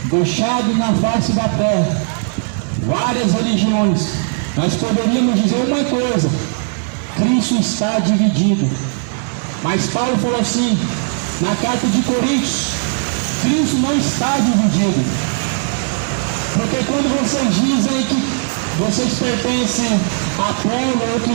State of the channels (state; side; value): silent; left; 68 dB below the other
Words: deixado na face da terra várias religiões, nós poderíamos dizer uma coisa: Cristo está dividido. Mas Paulo falou assim, na carta de Coríntios, Cristo não está dividido. Porque quando vocês dizem que vocês pertencem a Apolo,